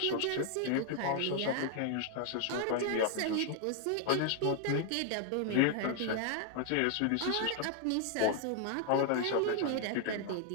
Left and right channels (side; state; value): both; different; correlation 0.00